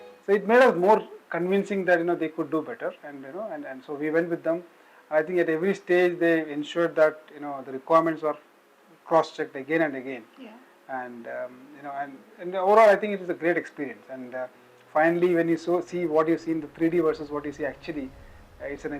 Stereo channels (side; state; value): both; identical; correlation 1.00